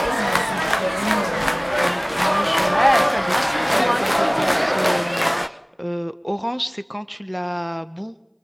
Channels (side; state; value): both; identical; correlation 1.00